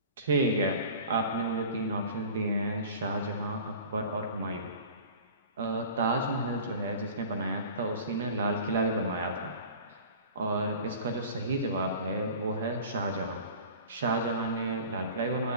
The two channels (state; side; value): inverted; both; correlation -0.41